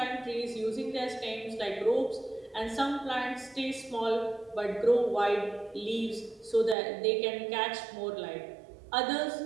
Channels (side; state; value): left; drops out; at 6.8 s